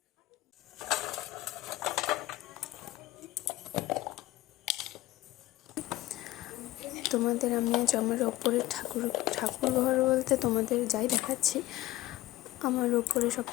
তোমাদের আমি আজ আমার ওপরের ঠাকুর ঘর বলতে তোমাদের যাই দেখাচ্ছি, আমার ওপরে সব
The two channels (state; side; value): quieter; right; 16.8 dB